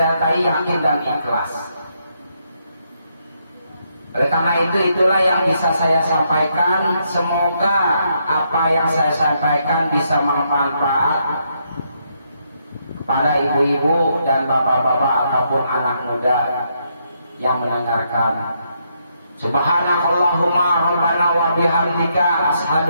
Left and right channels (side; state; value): both; inverted; correlation -0.77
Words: yakin dan ikhlas. Oleh karena itu, itulah yang bisa saya sampaikan. Semoga apa yang saya sampaikan bisa bermanfaat kepada ibu-ibu dan bapak-bapak ataupun anak muda yang mendengarkan. Subhanakallahumma rabbana wa bihamdika